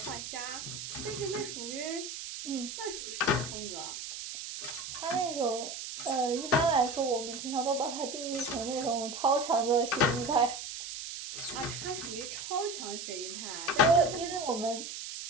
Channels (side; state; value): right; noise; hiss, 8 dB below the sound